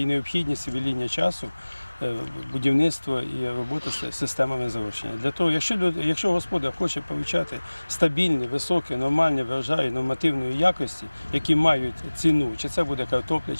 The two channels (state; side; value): inverted; both; correlation -1.00